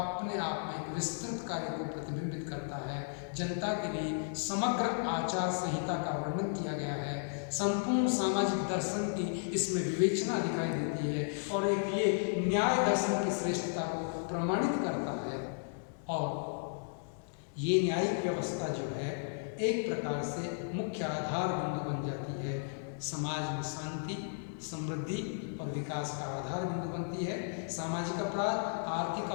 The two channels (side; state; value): right; silent; digital silence